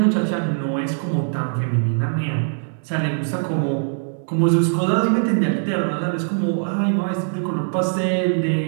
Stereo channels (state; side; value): silent; left; 64 dB below the other